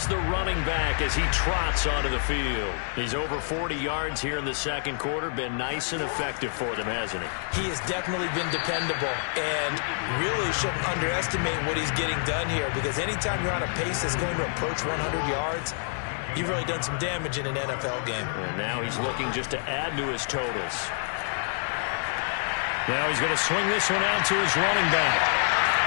the running back as he trots onto the field. He's over 40 yards here in the second quarter. Been nice and effective for them, hasn't he? He has definitely been dependable and really shouldn't underestimate what he's getting done here because anytime you're on a pace that's going to approach 100 yards, you've really done some damage in an NFL game. And now he's looking just to add to his totals. Now he's going to swing this one out to his running back.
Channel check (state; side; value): silent; right; digital silence